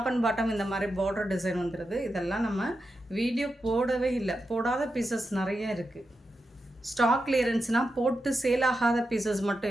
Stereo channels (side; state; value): both; normal; correlation 0.88